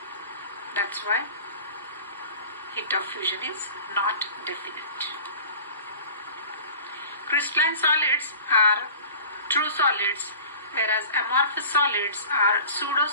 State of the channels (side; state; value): both; inverted; correlation -0.42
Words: That's why heat of fusion is not definite. Crystalline solids are true solids, whereas amorphous solids are